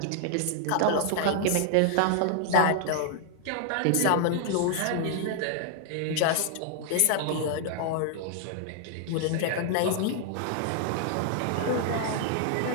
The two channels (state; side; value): different; both; correlation 0.00